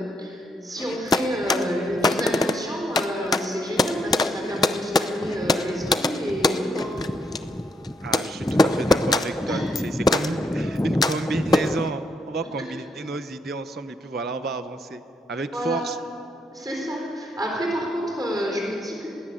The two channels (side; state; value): both; normal; correlation 0.76